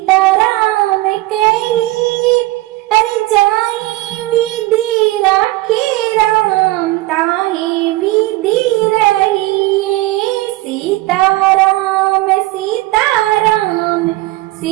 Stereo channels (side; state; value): left; quieter; 19.1 dB